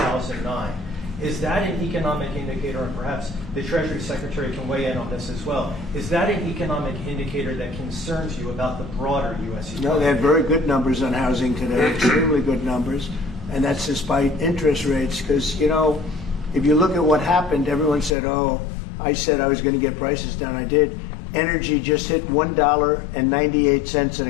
Is that an economic indicator, and perhaps the Treasury Secretary can weigh in on this as well, is that an economic indicator that concerns you about the broader U.S. economy? No, they had very good numbers on housing today, extremely good numbers, and that's despite interest rates, because, you know, if you look at what happened, everyone said, oh, I said I was going to get prices down. I did. Energy just hit $1.98 in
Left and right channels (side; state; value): right; drops out; at 18.2 s